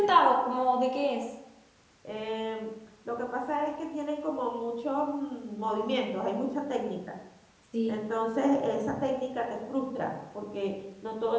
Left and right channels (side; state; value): both; identical; correlation 1.00